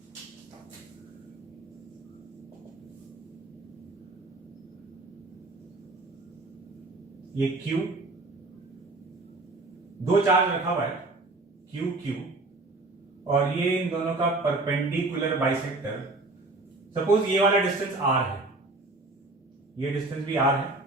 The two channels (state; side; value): quieter; left; 3.1 dB